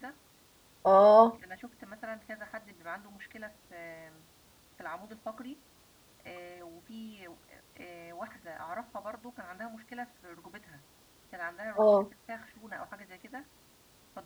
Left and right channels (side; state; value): both; identical; correlation 1.00